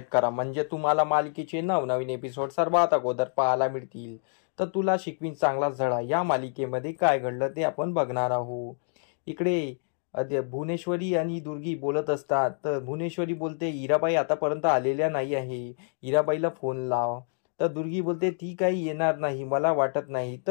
करा, म्हणजे तुम्हाला मालिकेचे नवनवीन एपिसोड सर्वात अगोदर पाहायला मिळतील. तर तुला शिकवीन चांगला धडा या मालिकेमध्ये काय घडलं ते आपण बघणार आहोत. इकडे भुवनेश्वरी आणि दुर्गी बोलत असतात. तर भुवनेश्वरी बोलते, इराबाई आतापर्यंत आलेल्या नाही आहे, इराबाईला फोन लाव. तर दुर्गी बोलते, ती काही येणार नाही, मला वाटत नाही.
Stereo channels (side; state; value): right; silent; digital silence